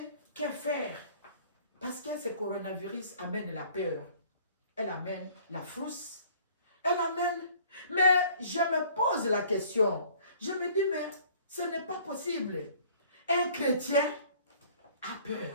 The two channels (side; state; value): both; inverted; correlation -0.53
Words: que faire? Parce que ce coronavirus amène la peur. Elle amène la frousse. Elle amène... Mais je me pose la question. Je me dis, mais ce n'est pas possible. Un chrétien a